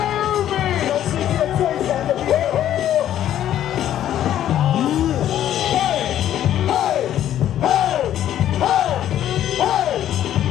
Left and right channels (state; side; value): quieter; right; 11.5 dB